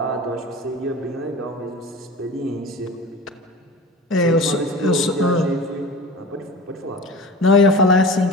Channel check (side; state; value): both; normal; correlation 0.35